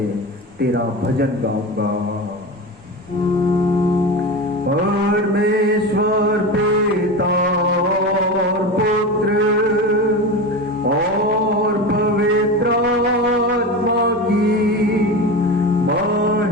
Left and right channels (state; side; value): noise; right; rumble, 30 dB below the sound